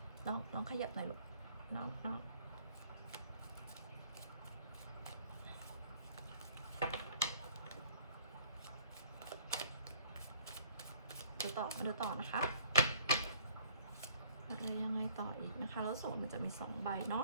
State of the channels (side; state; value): both; inverted; correlation -0.57